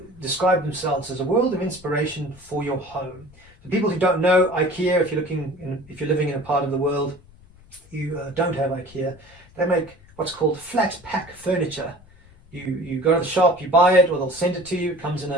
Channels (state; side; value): noise; left; rumble, 25 dB below the sound